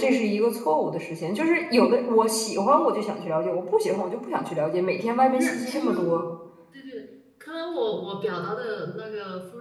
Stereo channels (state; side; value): identical; both; correlation 1.00